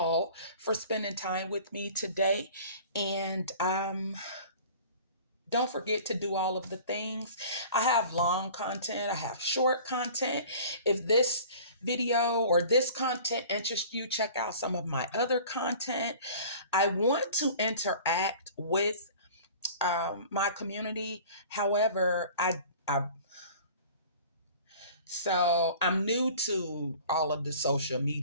for spending time with me today. And don't forget to do all of the things. I have long content, I have short content. If this video or this content interests you, check out some of my other content. I want to interact with my community. However, so I'm new to all of the social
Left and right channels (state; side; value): inverted; both; correlation -0.45